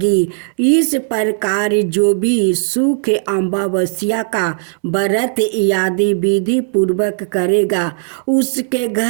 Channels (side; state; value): left; silent; digital silence